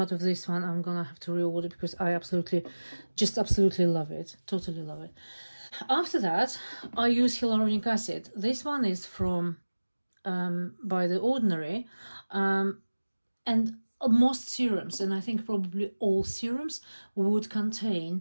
of this one. I'm gonna have to reorder because I absolutely love it, totally love it. After that, I use hyaluronic acid. This one is from By The Ordinary, and most serums, and I think probably all serums, would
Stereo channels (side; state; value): both; inverted; correlation -1.00